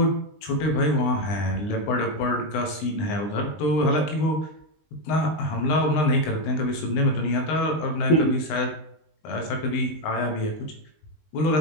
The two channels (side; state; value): right; late; 19 ms